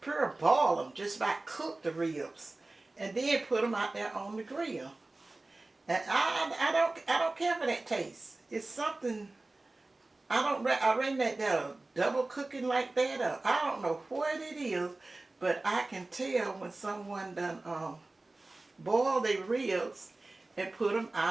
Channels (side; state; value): left; quieter; 3.1 dB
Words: pure boil them, just about cook the ribs, and then put them out there on the grill. And I don't care for that taste. It's something, I reckon that they're double cooking like that, or I don't know what it is, but I can tell when someone done boil their ribs and put them